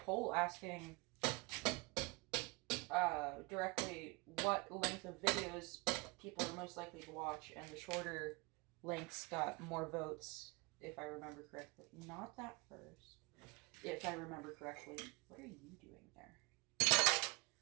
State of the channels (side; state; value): left; quieter; 27.0 dB